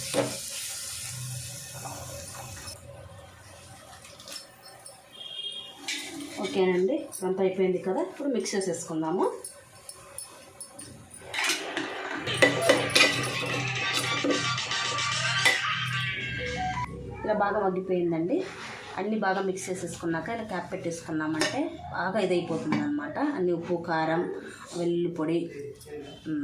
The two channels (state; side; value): identical; both; correlation 1.00